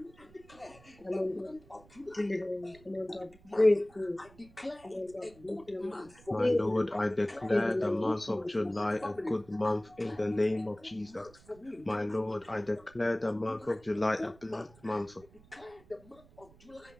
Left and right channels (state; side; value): noise; right; rumble, 25 dB below the sound